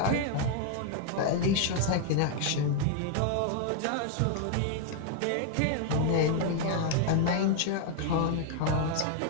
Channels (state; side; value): different; both; correlation 0.00